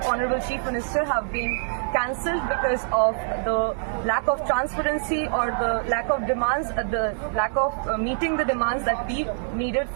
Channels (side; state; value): left; silent; digital silence